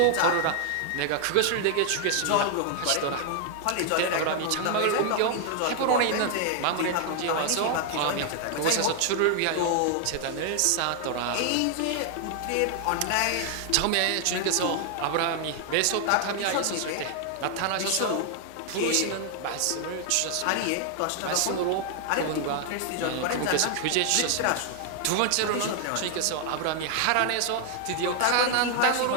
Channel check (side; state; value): both; different; correlation 0.00